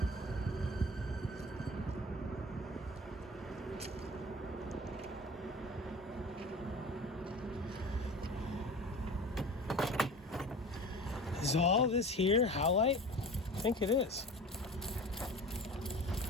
Is all this here howlite? I think it is.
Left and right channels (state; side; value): normal; both; correlation 0.38